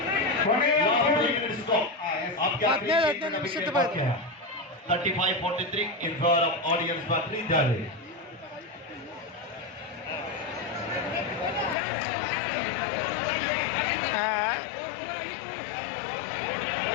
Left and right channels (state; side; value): drops out; right; at 11.8 s